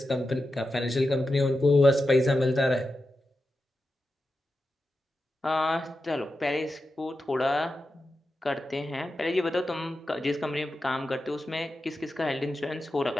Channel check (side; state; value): both; normal; correlation 0.90